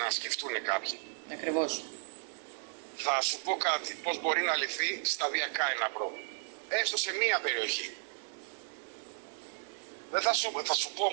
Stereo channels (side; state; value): left; silent; 55 dB below the other